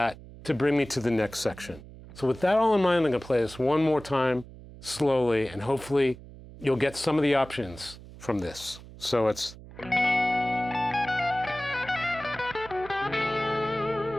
to bring me to the next section. So with that all in mind, I'm going to play this one more time slowly, and hopefully you'll get some of the options from this. So it's...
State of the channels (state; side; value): noise; right; hum, 17 dB below the sound